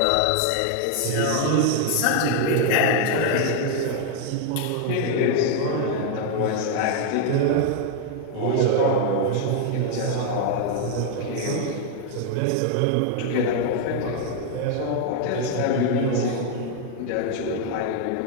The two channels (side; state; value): both; different; correlation 0.00